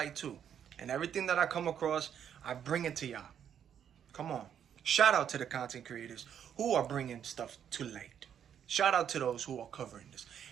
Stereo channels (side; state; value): left; quieter; 8.9 dB